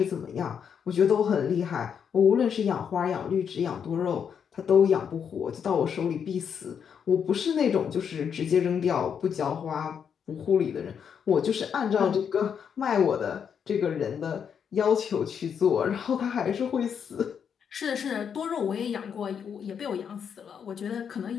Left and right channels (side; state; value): right; quieter; 7.5 dB